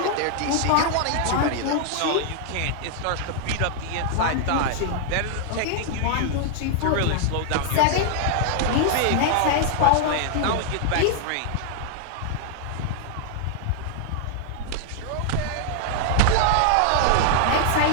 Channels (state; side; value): different; both; correlation -0.01